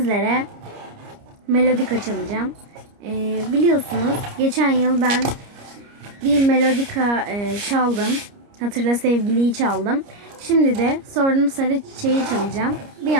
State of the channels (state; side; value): late; left; 29 ms